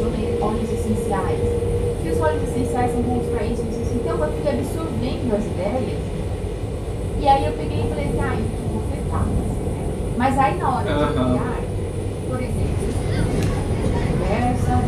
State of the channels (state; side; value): identical; both; correlation 1.00